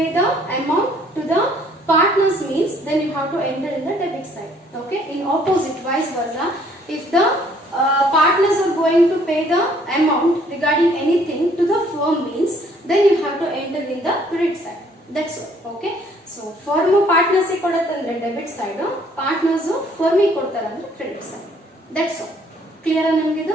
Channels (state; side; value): normal; both; correlation 0.62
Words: the amount to the partners means then you have to enter in the debit side. Okay, in opposite vice versa, if the partners are going to pay the amount regarding anything to the firm means then you have to enter in the credit side. That's all. Okay, so firm partners kodutte andre debit side, partners firm kodtare andre credit side. That's all. Clear ah namge